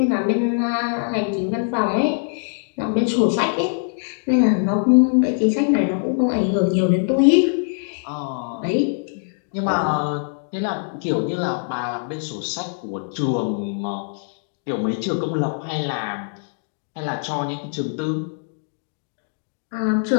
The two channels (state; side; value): silent; right; digital silence